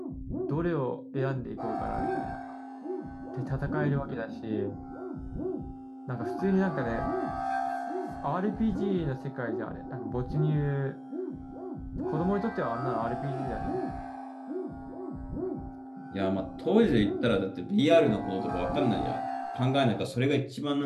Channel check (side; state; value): both; identical; correlation 1.00